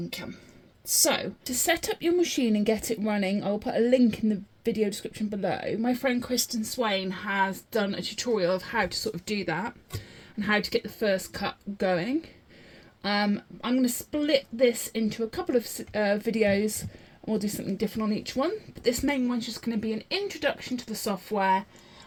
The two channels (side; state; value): both; identical; correlation 1.00